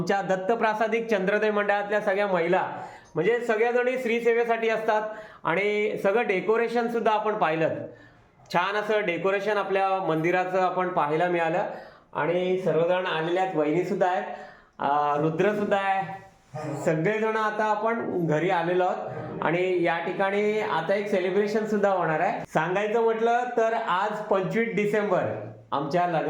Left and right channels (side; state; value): both; identical; correlation 1.00